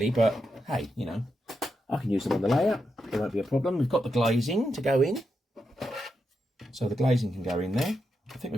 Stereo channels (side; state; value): both; normal; correlation 0.85